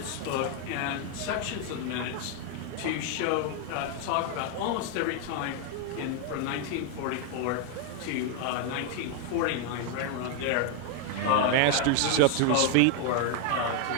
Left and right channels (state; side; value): different; both; correlation 0.01